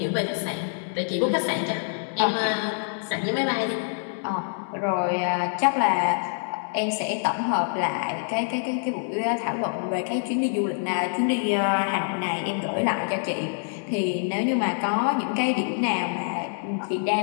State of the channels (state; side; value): silent; right; digital silence